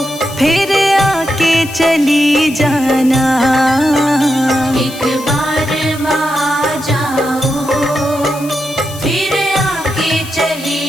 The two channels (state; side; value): noise; left; hiss, 16 dB below the sound